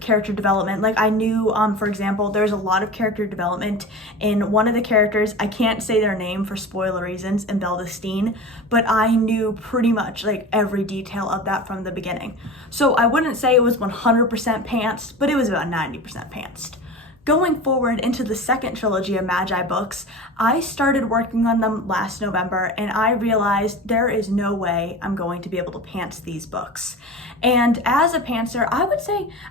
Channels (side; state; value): both; normal; correlation 0.32